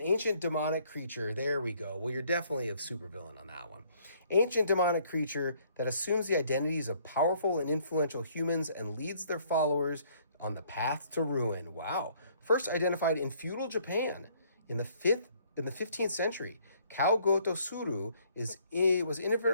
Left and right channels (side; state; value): both; inverted; correlation -0.63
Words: ancient demonic creature. There we go. Well, you're definitely a supervillain on that one. Ancient demonic creature that assumes the identities of powerful and influential humans and leads their followers on the path to ruin. Wow. First identified in feudal Japan in the 15th century, Kao Goto Suru was